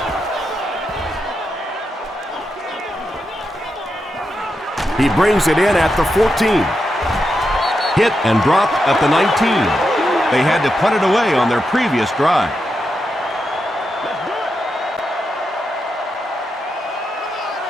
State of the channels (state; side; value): normal; both; correlation 0.86